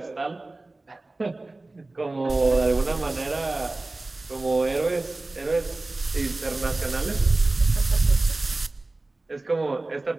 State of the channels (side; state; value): left; quieter; 3.0 dB